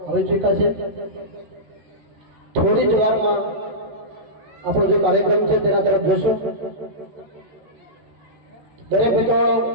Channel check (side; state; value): left; late; 14 ms